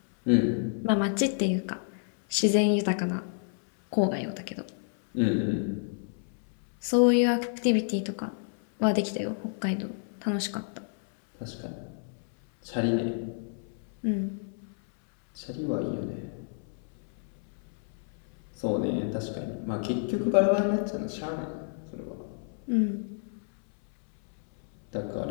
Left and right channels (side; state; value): right; silent; 58 dB below the other